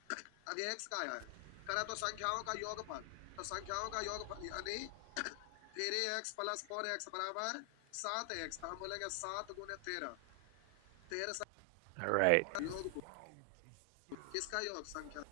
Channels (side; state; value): both; different; correlation 0.00